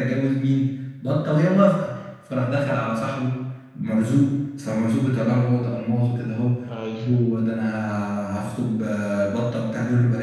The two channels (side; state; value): both; identical; correlation 1.00